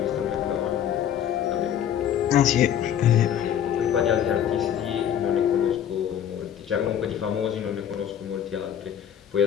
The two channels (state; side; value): quieter; right; 9.7 dB